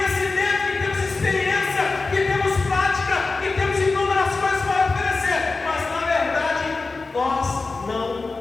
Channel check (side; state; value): right; quieter; 3.8 dB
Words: que temos experiência, que temos prática, que temos inúmeras coisas para oferecer, mas na verdade nós não